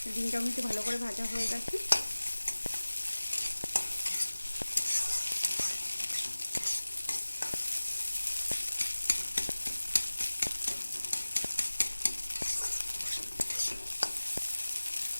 ডিমটা কিন্তু ভালো করে ভাজা হয়ে গেছে।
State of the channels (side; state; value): both; inverted; correlation -1.00